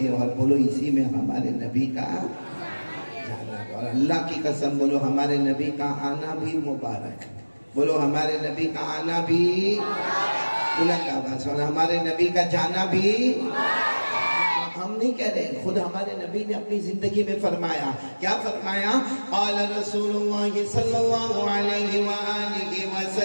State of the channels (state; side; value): inverted; both; correlation -1.00